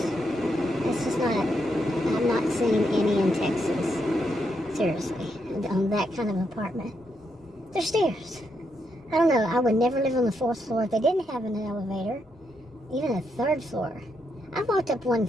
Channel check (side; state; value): both; normal; correlation 0.80